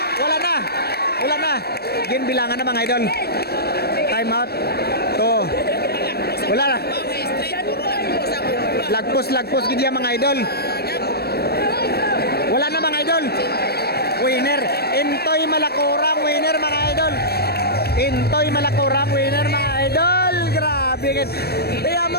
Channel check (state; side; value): late; right; 0.47 ms